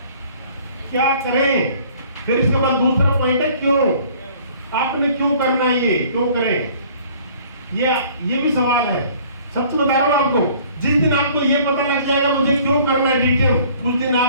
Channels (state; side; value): inverted; both; correlation -0.53